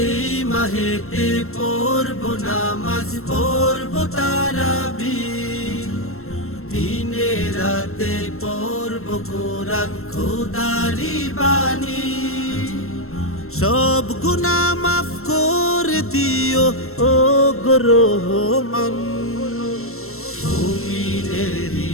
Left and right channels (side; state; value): right; late; 0.62 ms